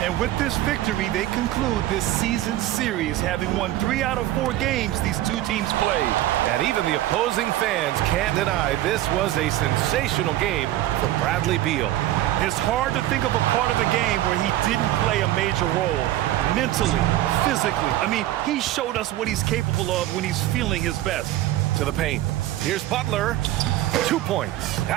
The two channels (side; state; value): left; quieter; 14.6 dB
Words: And with this victory, they conclude this season series, having won 3 out of 4 games these 2 teams played. And even the opposing fans can't deny this was a sensational game for Bradley Beal. It's hard to think of a part of the game where he didn't play a major role. Mentally, physically. I mean, he showed us what he's capable of when he's feeling his best. To the paint. Here's Butler. 2 points.